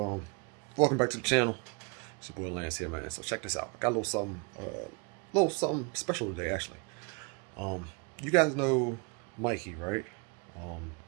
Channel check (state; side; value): quieter; left; 33.5 dB